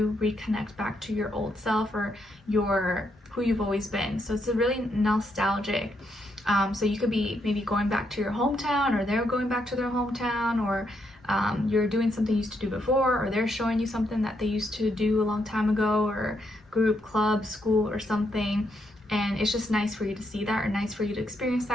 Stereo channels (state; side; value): normal; both; correlation 0.77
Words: reconnect back to your old self, or your who you've always been. So it's a really nostalgic. So you could be maybe going back to your hometown, or they're going back to their hometown, or you're doing something you used to do before, or they're showing you something that they used to do a long time ago, or group, club, school, or something. And it's just nice for you to see that, or nice for you to experience